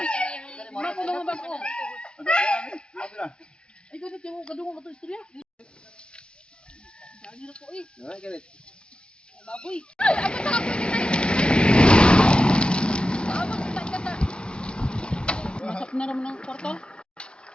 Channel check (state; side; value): late; right; 0.055 ms